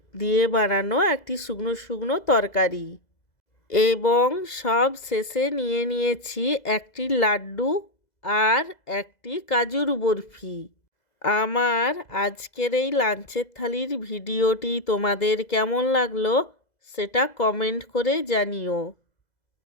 দিয়ে বানানো একটি শুকনো শুকনো তরকারি এবং সব শেষে নিয়ে নিয়েছি একটি লাড্ডু আর একটি কাজুর বরফি। আমার আজকের এই লাঞ্চের থালির ভিডিওটি তোমাদের কেমন লাগলো সেটা কমেন্ট করে জানিও।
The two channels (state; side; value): late; right; 2.0 ms